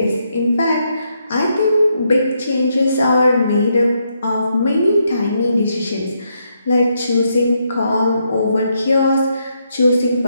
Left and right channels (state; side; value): inverted; both; correlation -0.78